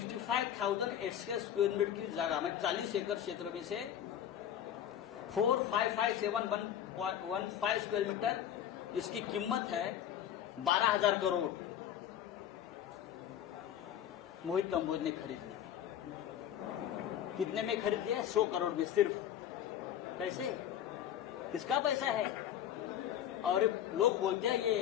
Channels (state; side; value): quieter; right; 10.3 dB